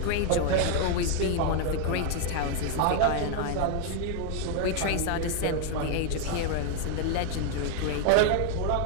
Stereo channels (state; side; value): different; both; correlation 0.00